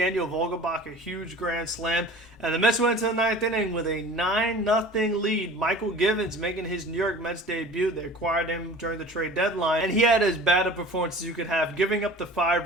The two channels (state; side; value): normal; both; correlation 0.42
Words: Vogelbach, a huge grand slam. And the Mets went to the 9th inning with a 9-0 lead. Michael Gibbons making his New York Mets debut. They acquired him during the trade deadline. And he had as bad a performance as you could have, giving up the